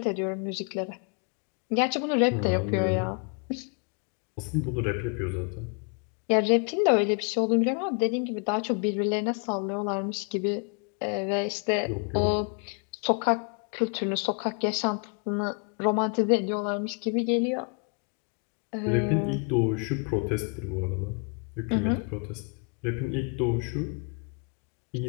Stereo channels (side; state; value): right; quieter; 38.2 dB